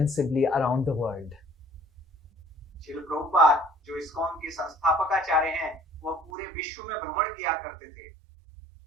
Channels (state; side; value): drops out; left; at 6.3 s